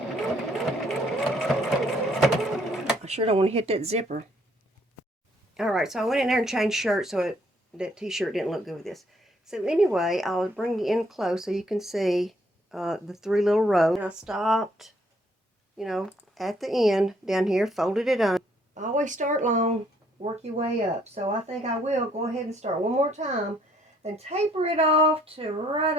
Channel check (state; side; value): normal; both; correlation 0.67